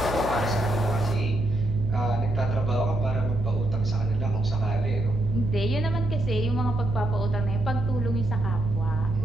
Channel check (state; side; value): noise; right; hum, 8 dB below the sound